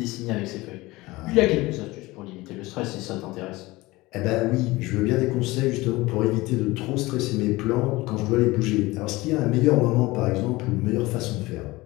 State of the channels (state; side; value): quieter; right; 20.6 dB